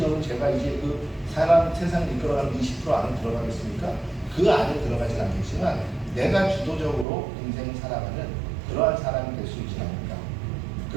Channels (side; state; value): left; drops out; at 7.1 s